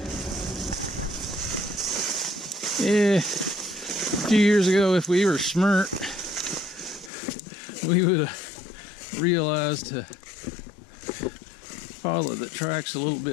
Yeah, a few years ago, if we were smart, we would have realized to follow the tracks a little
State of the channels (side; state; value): right; drops out; at 7.1 s